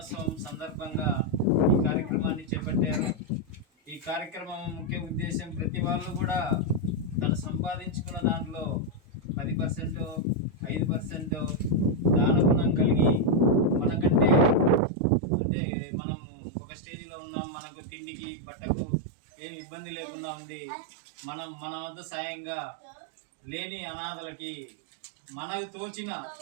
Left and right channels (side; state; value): left; drops out; at 14.8 s